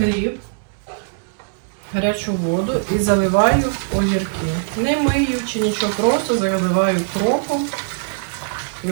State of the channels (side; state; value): left; silent; 65 dB below the other